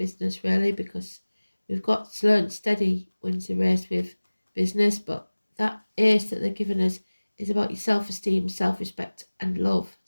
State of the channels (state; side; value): inverted; both; correlation -1.00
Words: really, because we've got slow and steady wins the race with business, but that ace that they're giving us is about your self-esteem, self-respect and love,